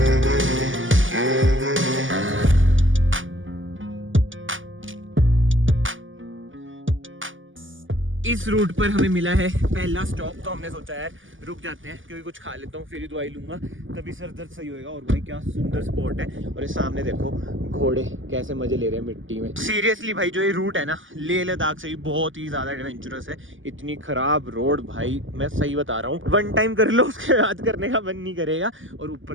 इस रूट पर हमें मिला है पहला स्टॉप, तो हमने सोचा यार रुक जाते हैं, क्योंकि कुछ खा लेता हूँ फिर ही दवाई लूंगा, तभी सर दर्द सही होएगा। और भाई क्या सुंदर स्पॉट है। और ये सामने देखो घोड़े कैसे मजे ले रहे हैं मिट्टी में। सीरियसली भाई जो ये रूट है ना लेह लद्दाख से भी बहुत ही ज्यादा एडवेंचरस है। इतनी खराब रोड भाई, मैं सही बता रहा हूँ, 1 टाइम कर लो उसके बाद करने का मन नहीं करेगा। और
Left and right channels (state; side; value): late; left; 0.57 ms